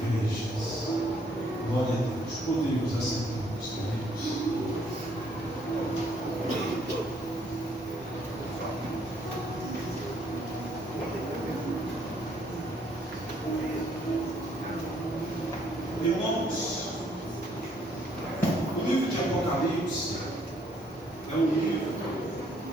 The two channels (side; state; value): both; normal; correlation 0.67